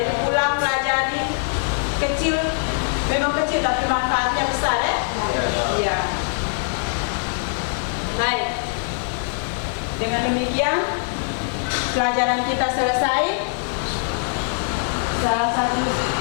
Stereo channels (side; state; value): right; silent; digital silence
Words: ulang pelajari kecil, memang kecil tapi manfaatnya besar ya. Iya. Baik. Dengan demikian pelajaran kita selesai. Salah satu